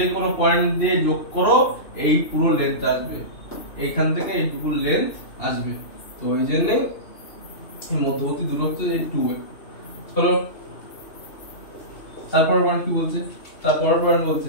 কোনো পয়েন্ট দিয়ে যোগ করো, এই পুরো লেন্থ আসবে, এইখান থেকে এইটুকু লেন্থ আসবে। তো ওই জন্য মধ্যবর্তী দূরত্ব এই 2A। চলো তারপর পয়েন্ট কি বলছে, তারপর পয়েন্ট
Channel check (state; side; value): late; right; 2.9 ms